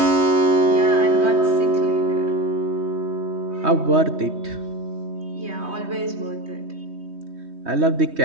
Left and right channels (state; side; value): late; left; 3.2 ms